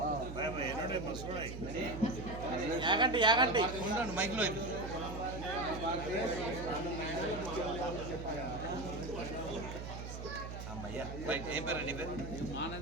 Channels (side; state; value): right; noise; hum, 8 dB below the sound